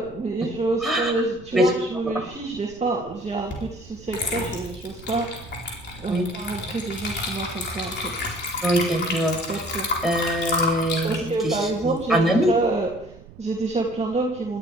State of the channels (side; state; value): right; noise; rumble, 20 dB below the sound